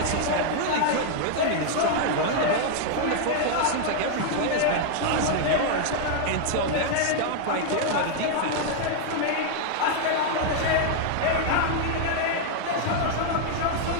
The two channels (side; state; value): both; different; correlation 0.00